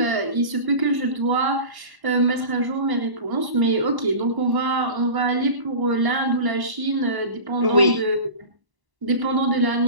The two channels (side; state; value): left; late; 1.0 ms